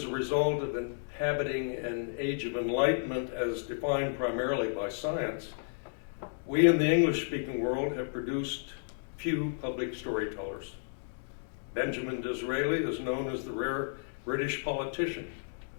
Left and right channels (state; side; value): silent; right; digital silence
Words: a result of inhabiting an age of enlightenment as defined primarily by science, we in the English-speaking world have produced few public storytellers. Benjamin Disraeli is known as the rare British politician